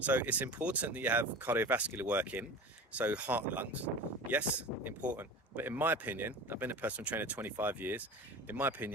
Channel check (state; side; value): normal; both; correlation 0.33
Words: it's important that you have cardiovascular work in, so heart and lungs. Yes, important. But in my opinion, I've been a personal trainer 25 years. In my